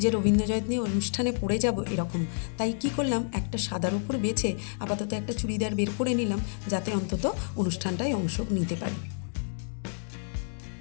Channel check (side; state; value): right; silent; digital silence